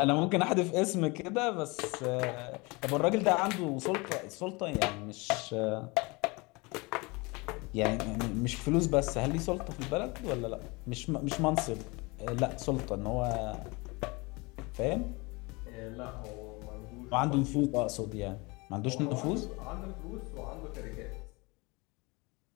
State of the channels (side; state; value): right; quieter; 26.2 dB